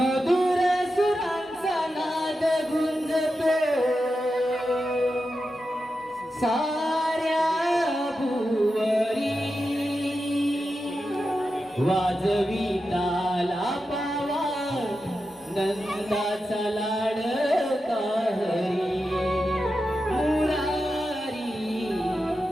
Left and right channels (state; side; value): normal; both; correlation 0.90